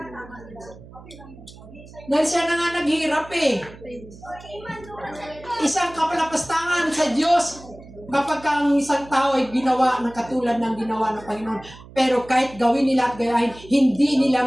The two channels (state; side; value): noise; right; hum, 19 dB below the sound